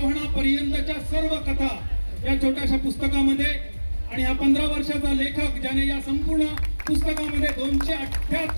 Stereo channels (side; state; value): both; inverted; correlation -1.00